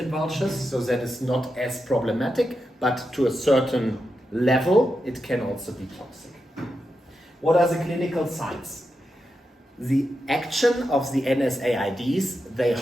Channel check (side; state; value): both; normal; correlation 0.87